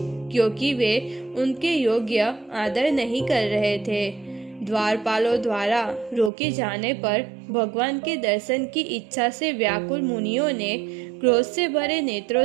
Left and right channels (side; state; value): left; drops out; at 6.3 s